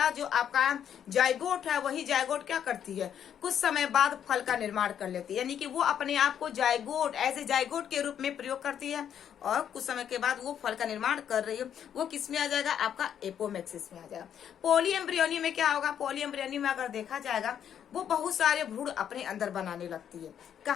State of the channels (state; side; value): quieter; right; 9.2 dB